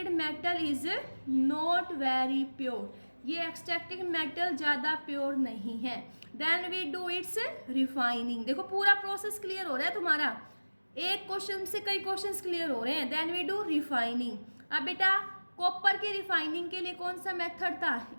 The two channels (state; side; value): inverted; both; correlation -1.00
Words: metal is not very pure. ये एक्सट्रैक्टेड मेटल ज़्यादा प्योर नहीं है। Then we do its refining. देखो पूरा प्रोसेस क्लियर हो रहा है तुम्हारा, एक क्वेश्चन से कई क्वेश्चंस क्लियर हो रहे हैं। Then we do refining. अब बेटा कॉपर की रिफाइनिंग के लिए कौन सा मेथड था?